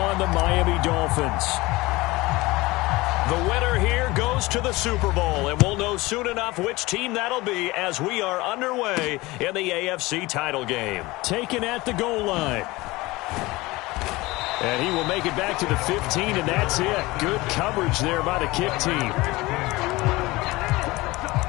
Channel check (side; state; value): right; quieter; 21.0 dB